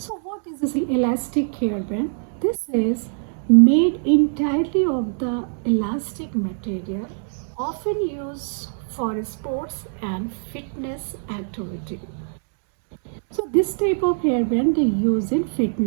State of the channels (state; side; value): silent; left; digital silence